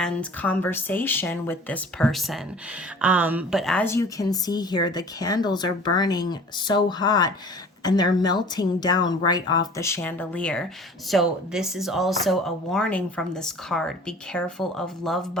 conversation with this person. But as you can see here, the candles are burning so hot and they're melting down right off the chandelier. So this is also a warning from this card. Be careful of love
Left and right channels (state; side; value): normal; both; correlation 0.45